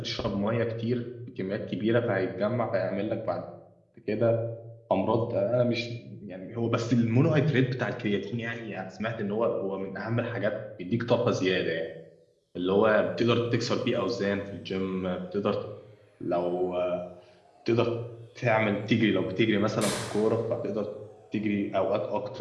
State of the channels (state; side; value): identical; both; correlation 1.00